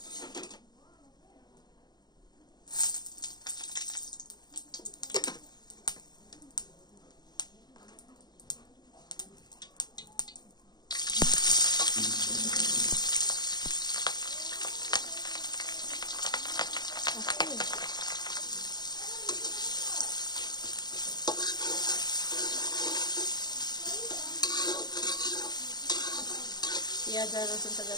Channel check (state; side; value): late; right; 0.20 ms